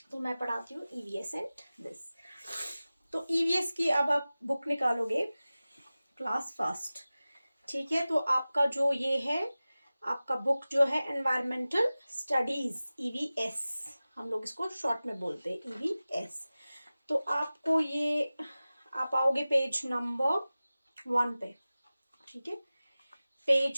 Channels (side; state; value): both; inverted; correlation -0.97